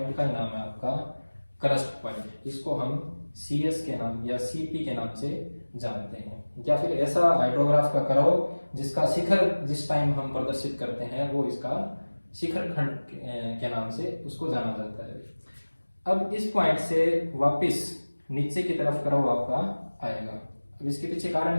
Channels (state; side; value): inverted; both; correlation -1.00